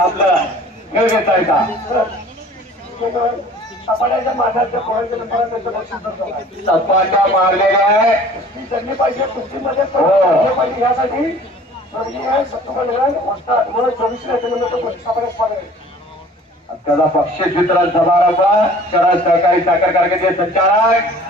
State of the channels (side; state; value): both; normal; correlation 0.48